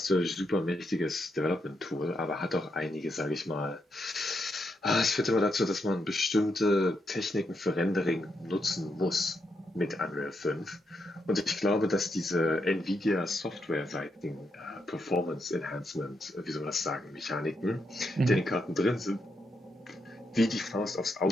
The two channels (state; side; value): normal; both; correlation 0.81